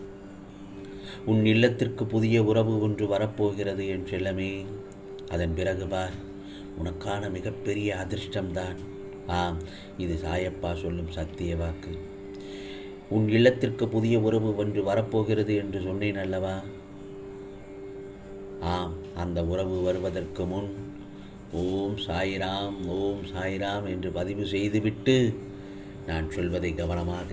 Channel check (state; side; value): identical; both; correlation 1.00